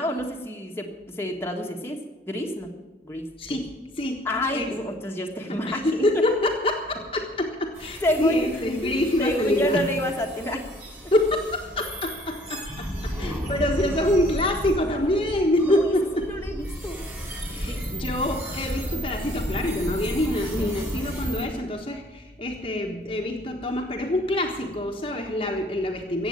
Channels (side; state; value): both; normal; correlation 0.57